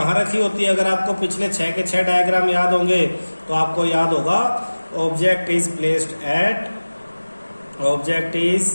रखी होती है? अगर आपको पिछले 6 के 6 डायग्राम याद होंगे तो आपको याद होगा object is placed at, object is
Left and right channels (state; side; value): inverted; both; correlation -1.00